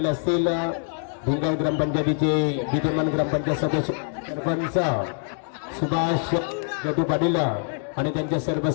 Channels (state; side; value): silent; right; 62 dB below the other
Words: असतील, भिंगळ ग्रामपंचायतीचे विद्यमान ग्रामपंचायत सदस्य सरपंच सुभाष गटू पाटील आणि त्यांच्या सर्व